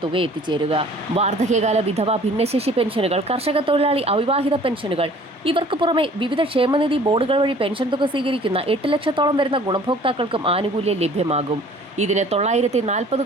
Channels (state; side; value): normal; both; correlation 0.51